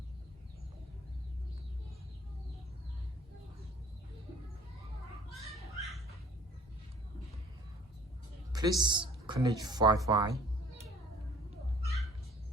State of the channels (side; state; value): both; normal; correlation 0.52